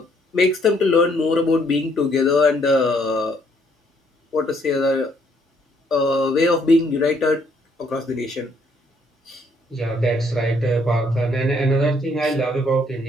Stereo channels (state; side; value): normal; both; correlation 0.67